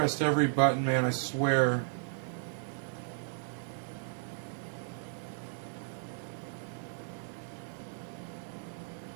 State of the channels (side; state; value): left; silent; 55 dB below the other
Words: every button, man, I swear.